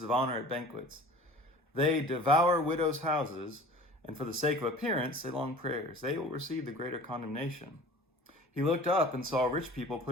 of honor at banquets. They devour widows' houses, and for the sake of appearance, say long prayers. They will receive the greater condemnation." He looked up and saw rich people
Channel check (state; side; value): normal; both; correlation 0.43